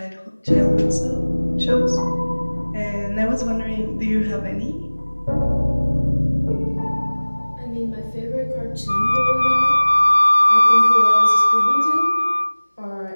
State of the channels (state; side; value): inverted; both; correlation -1.00